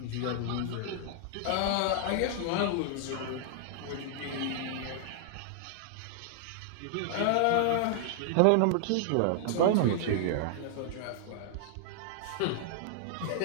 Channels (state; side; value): different; both; correlation -0.01